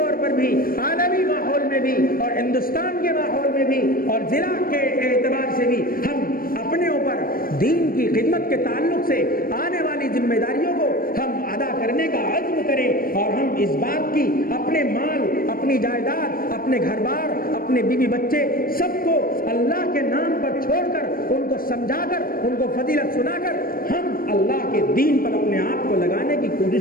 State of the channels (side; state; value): right; late; 0.42 ms